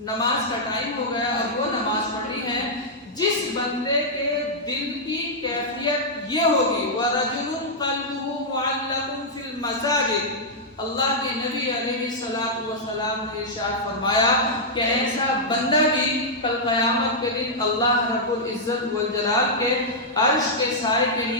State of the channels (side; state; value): both; normal; correlation -0.07